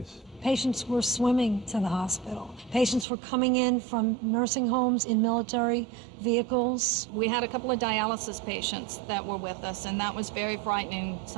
Patients were swimming to the hospital. Patients were coming in from nursing homes in military vehicles. We had a couple of dialysis patients that were with us, and that was very frightening.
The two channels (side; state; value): left; drops out; at 3.1 s